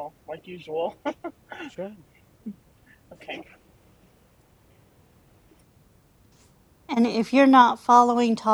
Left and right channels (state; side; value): identical; both; correlation 1.00